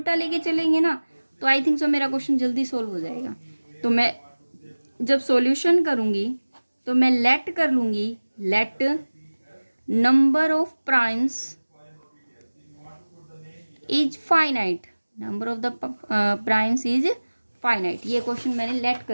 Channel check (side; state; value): both; inverted; correlation -1.00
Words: लेके चलेंगे ना तो आई थिंक सो मेरा क्वेश्चन जल्दी सोल्व हो जाएगा। तो मैं जब सॉल्यूशन करूँगी तो मैं लेट कर लूँगी, let number of primes is finite, number of the primes is finite. ये क्वेश्चन मैंने लेट